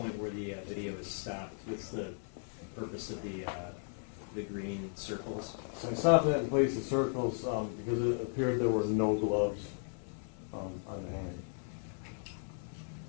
where the video is stopped, what's the purpose of the green circles? So I stopped that in place of circles because it appeared there were no gloves on the hand.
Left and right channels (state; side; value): silent; right; 54 dB below the other